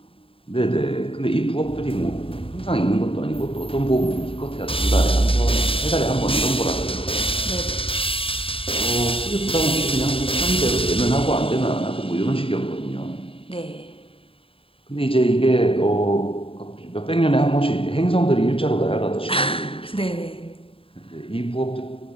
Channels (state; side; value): late; right; 0.27 ms